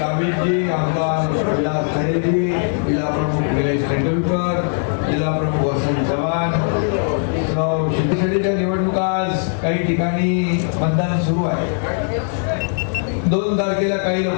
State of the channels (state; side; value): silent; right; 59 dB below the other